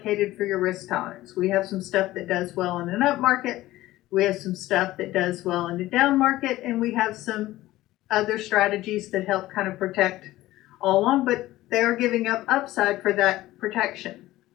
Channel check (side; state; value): right; quieter; 16.5 dB